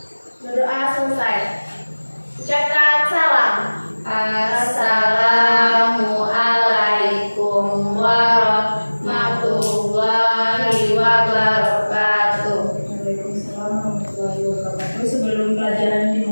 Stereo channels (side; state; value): both; inverted; correlation -1.00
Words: Berdoa selesai. Ucapkan salam. Assalamualaikum warahmatullahi wabarakatuh. Waalaikumsalam warahmatullahi wabarakatuh. Sebelum pelajaran